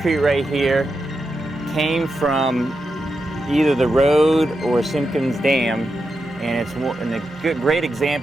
right here came from either the road or Simpkins Dam, and it's a great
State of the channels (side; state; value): both; normal; correlation 0.87